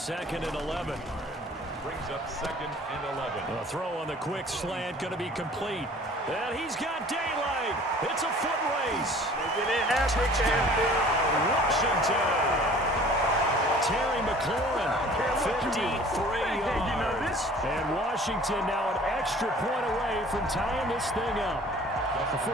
and 11. Brings up 2nd and 11. A throw on the quick slant going to be complete. And he's got daylight. It's a foot race. Washington. Terry McLaurin, 53 yards. And Washington now an extra point away from tying this thing up.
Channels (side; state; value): both; normal; correlation 0.49